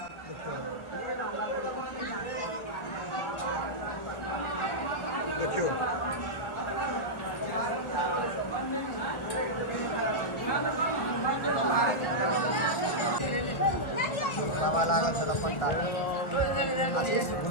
देखियो बाबा लागल छल पंडा आशीष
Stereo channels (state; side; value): late; right; 1.3 ms